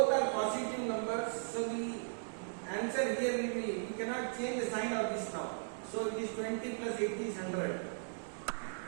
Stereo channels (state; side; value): silent; left; digital silence